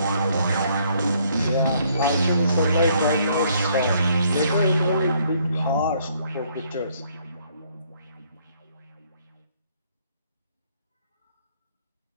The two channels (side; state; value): both; inverted; correlation -0.66